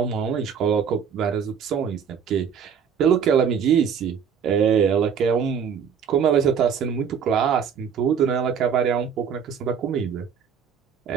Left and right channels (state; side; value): quieter; left; 7.3 dB